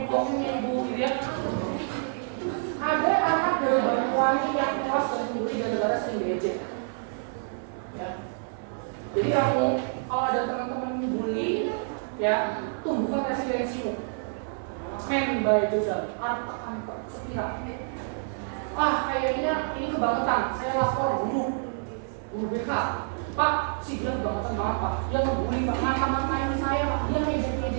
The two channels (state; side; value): silent; left; 60 dB below the other